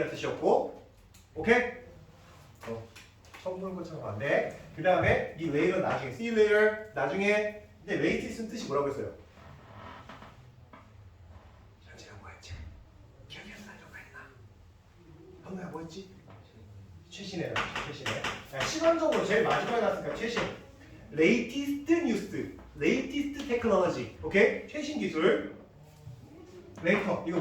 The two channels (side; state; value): both; identical; correlation 1.00